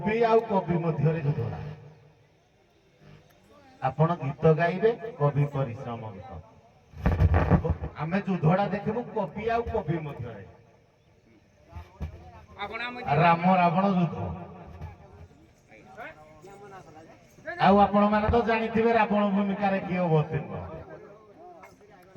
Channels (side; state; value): both; identical; correlation 1.00